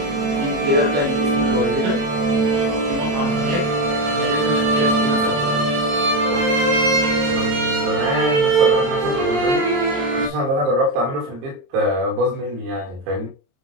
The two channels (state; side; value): late; left; 22 ms